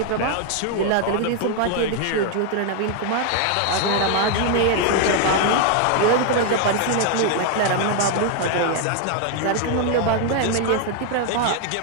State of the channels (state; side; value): different; both; correlation 0.00